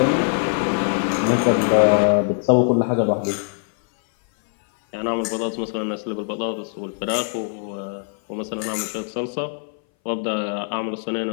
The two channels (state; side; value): silent; right; 60 dB below the other